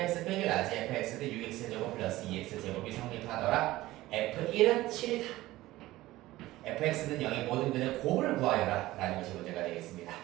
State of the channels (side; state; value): left; quieter; 17.2 dB